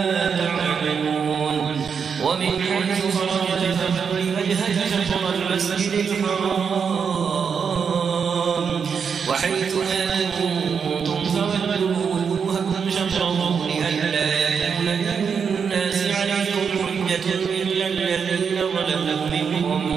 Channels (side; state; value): left; quieter; 6.4 dB